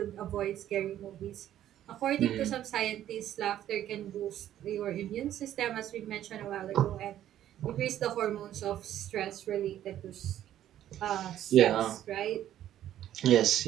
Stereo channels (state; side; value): quieter; left; 11.8 dB